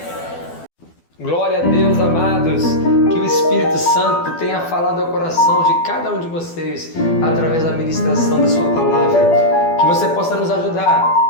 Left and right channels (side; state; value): right; late; 12 ms